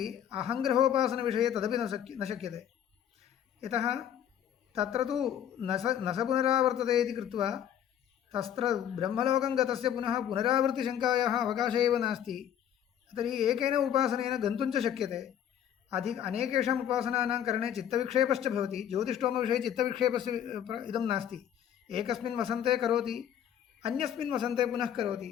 अहङ्ग्रहोपासनविषये तदपि न शक्यते यतः तत्र तु न स पुनरावर्तते इति कृत्वा तत्र ब्रह्मलोकं गतस्य पुनः पुनरावृत्तिशङ्कायाः अवकाशः एव नास्ति तर्हि एकेन उपासनेन गन्तुं च शक्यते अनेकेषाम् उपासनानां करणे चित्तविक्षेपश्च भवति ज्योतिष्ठोमविषये चित्तविक्षेपस्य इदं नास्ति एकस्मिन् वसन्ते करोति अन्यस्मिन् वसन्ते पुनः करोति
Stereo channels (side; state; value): right; quieter; 9.8 dB